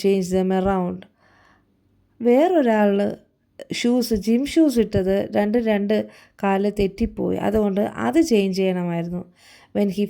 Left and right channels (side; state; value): both; identical; correlation 1.00